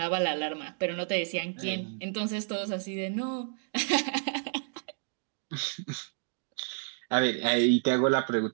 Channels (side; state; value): left; silent; digital silence